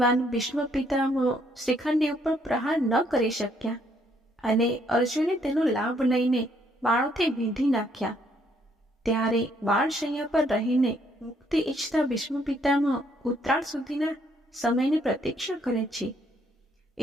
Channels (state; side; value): normal; both; correlation 0.69